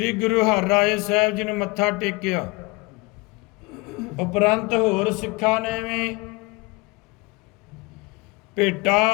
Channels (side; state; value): right; quieter; 24.9 dB